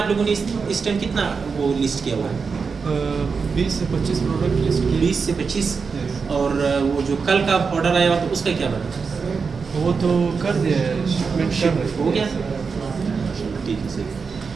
लोगों ने इस टाइम कितना वो लिस्ट किया हुआ है? 20 से 25 प्रोडक्ट लिस्ट किए। 20 से 25। और वो जो कल का ऑर्डर आया हुआ तो उसका क्या बना? वो तो कर दिया है, शिपमेंट कर रहे हो गया, ठीक है।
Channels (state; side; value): quieter; left; 5.2 dB